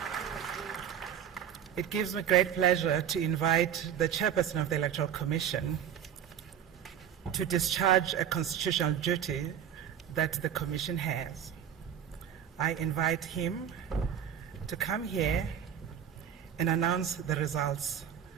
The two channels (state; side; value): quieter; left; 9.2 dB